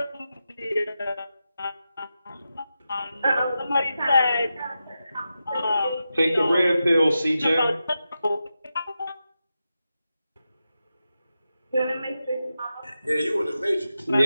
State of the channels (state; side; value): inverted; both; correlation -0.90